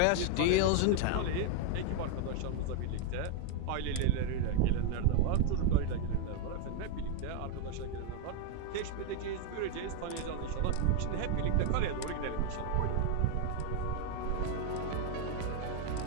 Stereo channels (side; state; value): both; different; correlation 0.00